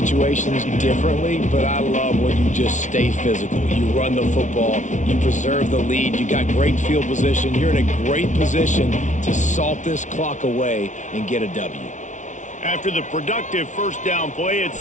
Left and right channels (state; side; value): late; right; 0.36 ms